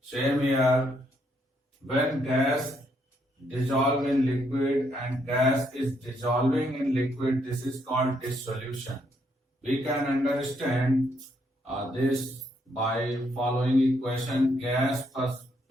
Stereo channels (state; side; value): normal; both; correlation 0.73